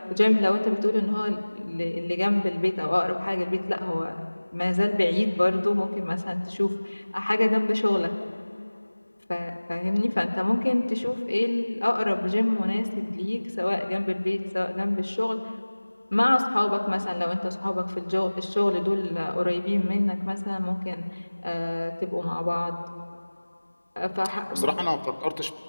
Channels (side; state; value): both; inverted; correlation -1.00